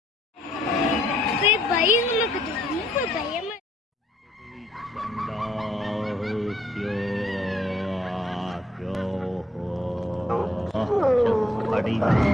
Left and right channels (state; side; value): normal; both; correlation 0.70